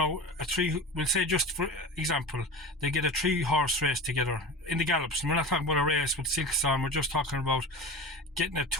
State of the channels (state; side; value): normal; both; correlation 0.31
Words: we'll say, just for example, they get a 3-horse race together in the gallops. And we're not talking about a race with silks on, we're just talking about getting a